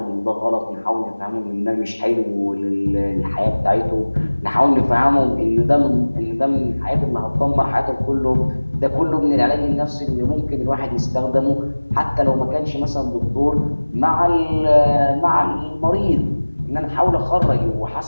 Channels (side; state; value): both; inverted; correlation -1.00